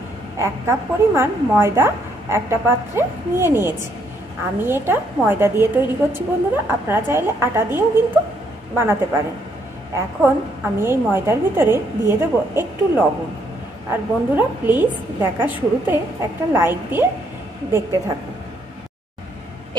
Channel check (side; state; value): both; normal; correlation 0.71